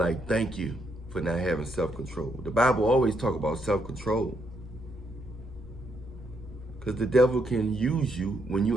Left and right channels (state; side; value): normal; both; correlation 0.76